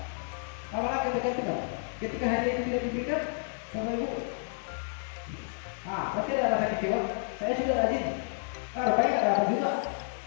Awalnya ketergantungan. Ketika hadiah itu tidak diberikan, Bapak Ibu, pasti ada rasa kecewa. Saya sudah rajin, rupanya nggak dapat juga.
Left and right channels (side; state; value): right; silent; digital silence